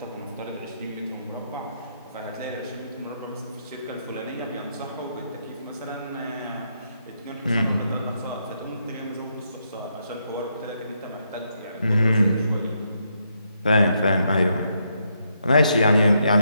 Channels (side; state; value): both; inverted; correlation -0.78